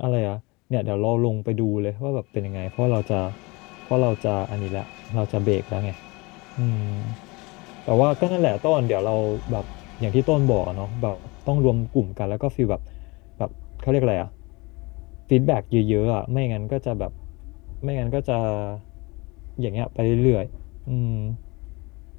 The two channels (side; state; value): right; quieter; 25.6 dB